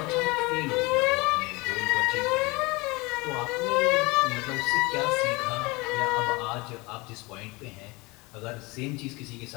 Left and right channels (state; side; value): quieter; right; 24.7 dB